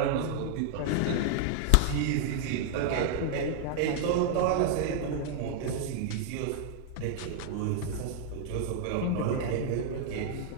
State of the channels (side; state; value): both; different; correlation 0.00